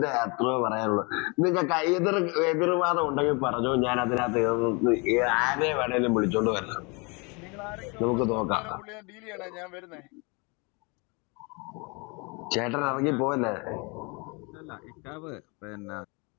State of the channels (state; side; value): quieter; right; 30.0 dB